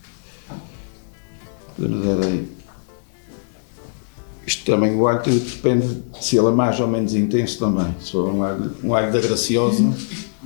Podemos dar aí. Isto também, o alho depende se ele é mais ou menos intenso também. Se for um alho da Graciosa,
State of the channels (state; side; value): silent; right; 59 dB below the other